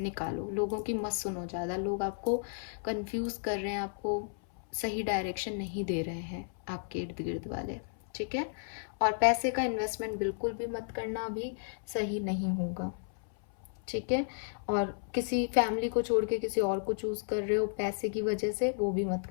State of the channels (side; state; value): right; silent; 56 dB below the other